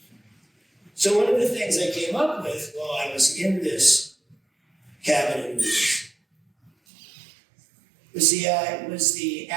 So one of the things I came up with while I was in this cabin in the woods was the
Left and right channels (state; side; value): drops out; left; at 6.7 s